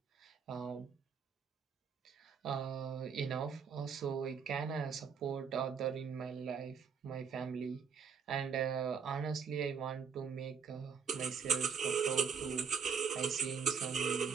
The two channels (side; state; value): left; quieter; 6.3 dB